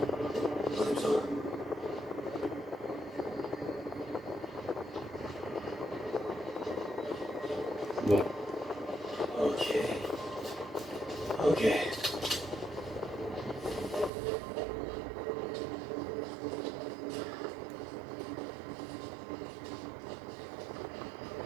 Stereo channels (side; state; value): left; drops out; at 14.1 s